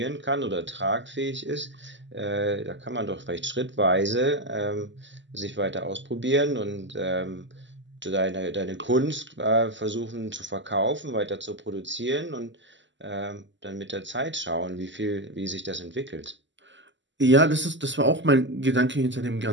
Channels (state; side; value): late; left; 0.54 ms